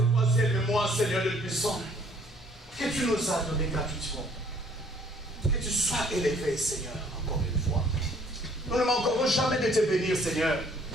toi, ciel et moi, Seigneur de puissant, que tu nous as donné gratuitement. Que tu sois élevé, Seigneur, encore une fois. Nous ne manquerons jamais de te bénir, Seigneur,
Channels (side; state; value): both; normal; correlation 0.60